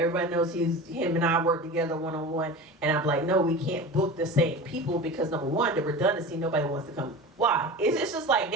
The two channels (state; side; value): normal; both; correlation 0.32